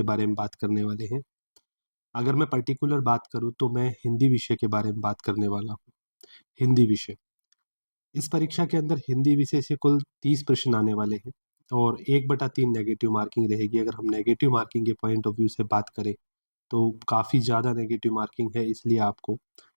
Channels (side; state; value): both; inverted; correlation -1.00